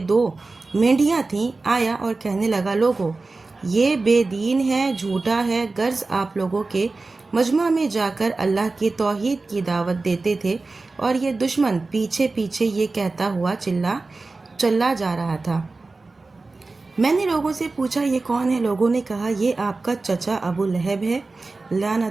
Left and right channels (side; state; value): left; quieter; 3.6 dB